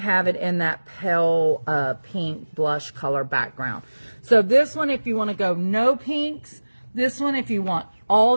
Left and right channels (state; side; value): inverted; both; correlation -1.00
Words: it in that pale pink blush color background. So this one, if you want to go no pinks, this one, if you want all